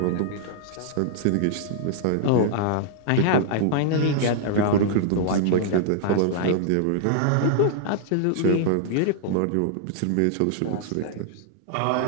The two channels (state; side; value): different; both; correlation -0.01